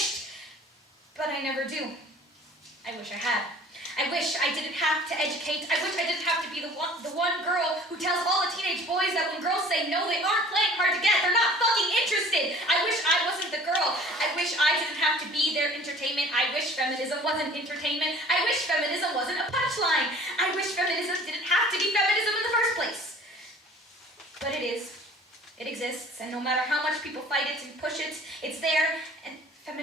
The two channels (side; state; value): both; normal; correlation 0.49